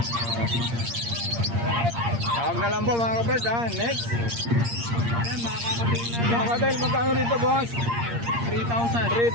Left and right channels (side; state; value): left; late; 8.6 ms